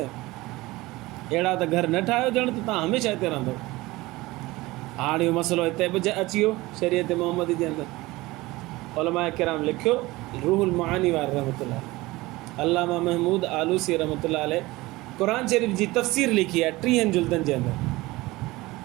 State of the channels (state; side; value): quieter; left; 20.2 dB